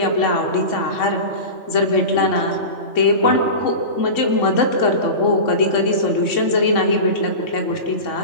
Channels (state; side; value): late; right; 3.6 ms